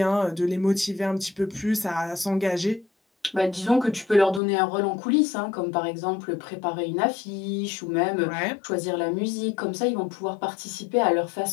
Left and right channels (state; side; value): drops out; right; at 4.4 s